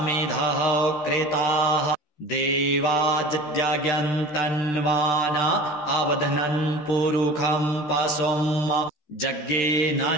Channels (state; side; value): late; right; 13 ms